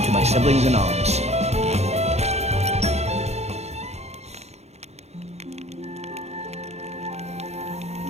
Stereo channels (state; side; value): late; left; 0.31 ms